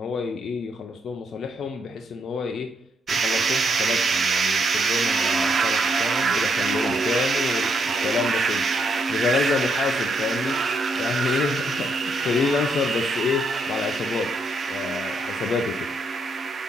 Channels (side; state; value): both; normal; correlation 0.76